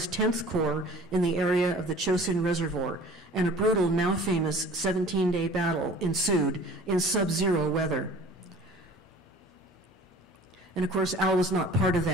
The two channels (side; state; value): both; normal; correlation 0.46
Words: 10th Corps in the area of the Chosin Reservoir, and a brutal, now famous 17-day battle ensued in sub-zero weather. And of course, Al was not part of